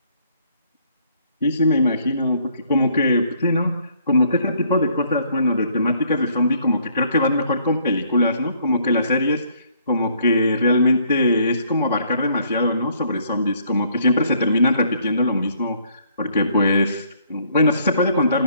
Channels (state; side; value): inverted; both; correlation -0.65